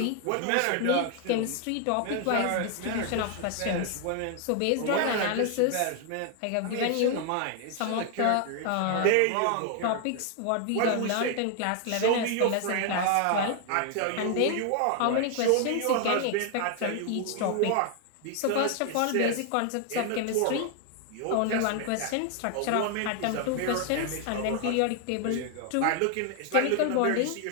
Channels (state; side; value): different; both; correlation 0.00